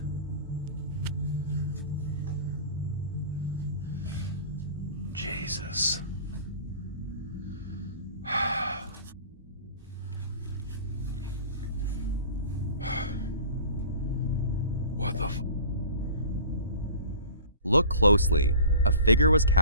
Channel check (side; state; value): both; inverted; correlation -0.41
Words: Jesus. What the Look closely. A figure was